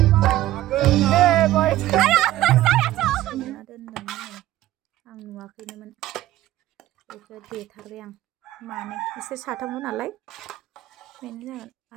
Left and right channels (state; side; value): quieter; left; 14.7 dB